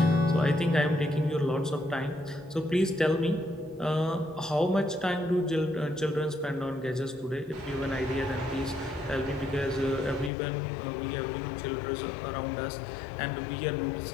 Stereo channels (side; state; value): right; drops out; at 10.3 s